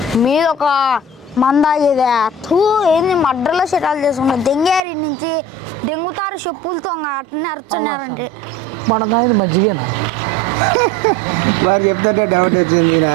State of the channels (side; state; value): left; drops out; at 4.8 s